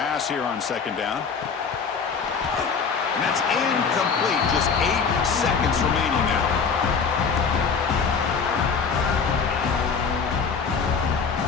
here on second down. And that's incomplete. Just 8 seconds remaining now.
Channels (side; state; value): right; quieter; 5.7 dB